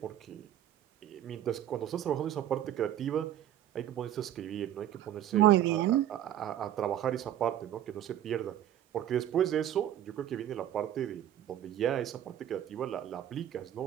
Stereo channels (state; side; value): quieter; left; 11.5 dB